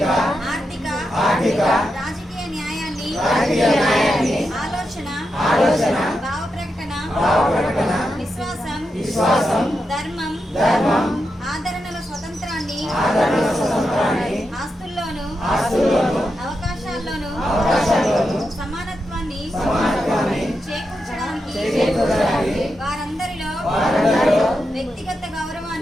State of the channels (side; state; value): both; normal; correlation 0.87